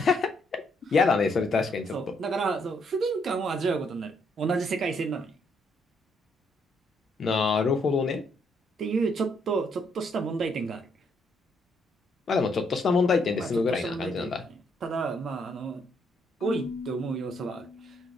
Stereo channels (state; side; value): normal; both; correlation 0.72